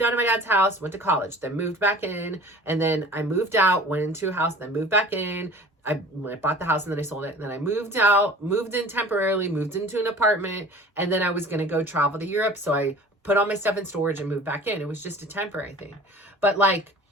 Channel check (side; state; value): both; normal; correlation 0.44